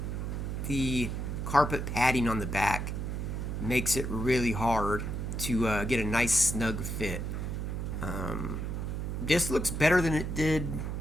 carpet padding on the back makes it really hard to get a nice snug fit. Um, this looks better than it did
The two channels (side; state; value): right; noise; hum, 3 dB below the sound